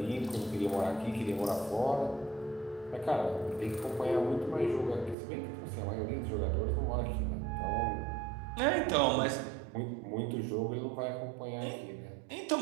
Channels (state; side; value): drops out; left; at 5.2 s